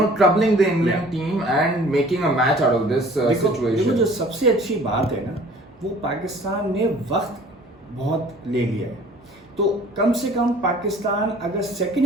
troubling the England team and making a match out of this situation. जो सबसे अच्छी बात है ना, वो पाकिस्तान ने वक्त बहुत ले लिया है. तो कम से कम पाकिस्तान अगर सेकेंड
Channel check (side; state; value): both; normal; correlation 0.50